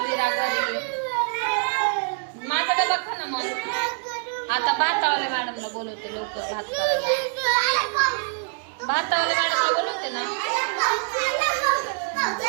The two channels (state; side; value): silent; left; 62 dB below the other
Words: विरा घरी. माझा डबा खा ना मग. आता भातावाल्या मॅडमला बोलवते लवकर भात करायला. भातावाल्या मॅडमला बोलवते ना.